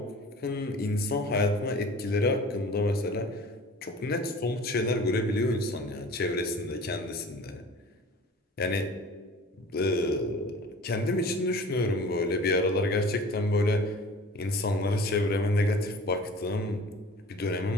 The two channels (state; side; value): normal; both; correlation 0.43